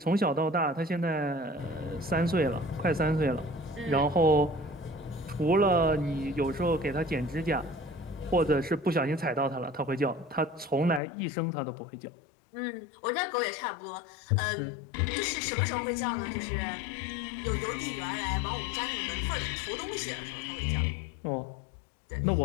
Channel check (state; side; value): drops out; right; at 11.0 s